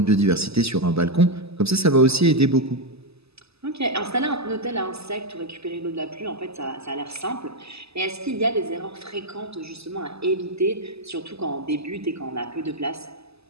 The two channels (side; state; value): left; late; 0.79 ms